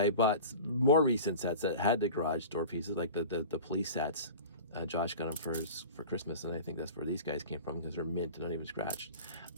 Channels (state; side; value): inverted; both; correlation -0.37